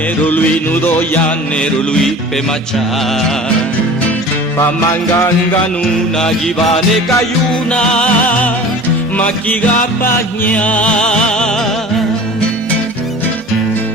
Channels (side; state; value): both; normal; correlation 0.40